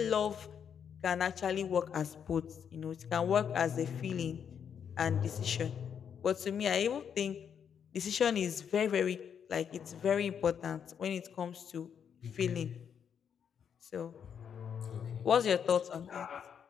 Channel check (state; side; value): quieter; right; 7.8 dB